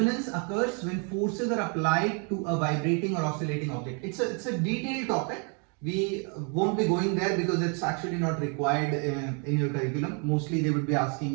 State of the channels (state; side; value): quieter; left; 37.4 dB